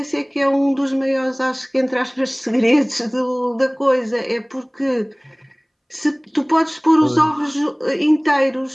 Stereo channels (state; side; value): identical; both; correlation 1.00